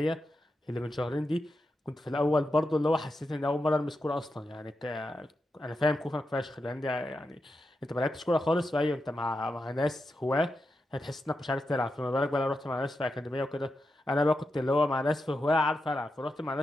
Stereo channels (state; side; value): normal; both; correlation 0.88